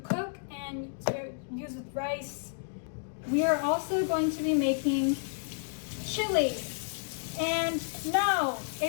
and to use with rice. We are also going to be making chili. And no,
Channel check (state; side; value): silent; right; digital silence